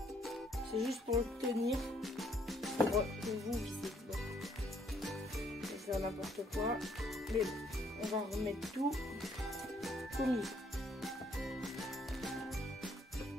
C'est juste pour le tenir, pour vous visser. Bon. Je vais faire n'importe quoi, mais bon, on va remettre tout comme il faut.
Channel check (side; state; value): both; normal; correlation 0.67